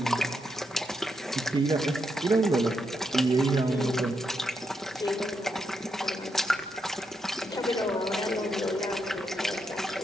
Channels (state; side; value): normal; both; correlation 0.81